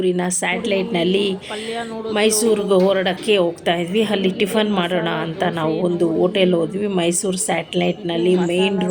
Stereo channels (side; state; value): both; identical; correlation 1.00